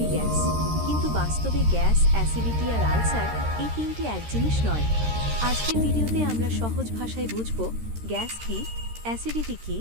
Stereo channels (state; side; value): late; left; 13 ms